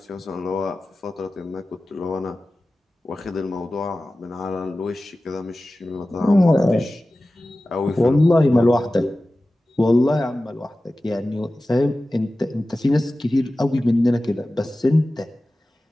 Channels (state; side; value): normal; both; correlation 0.96